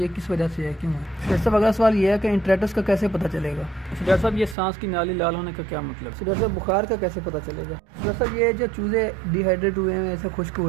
किस वजह से है, क्यों है? डॉक्टर साहब अगला सवाल ये है कि इंट्राइटिस का कैसे पता चलेगा? डॉक्टर साहब ये सांस की नाली लाल होने का क्या मतलब? डॉक्टर साहब बुखार का कैसे पता चलेगा? डॉक्टर साहब ये जो चूजे डिहाइड्रेट हुए हैं, ऐसे खुश्क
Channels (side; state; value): left; drops out; at 4.5 s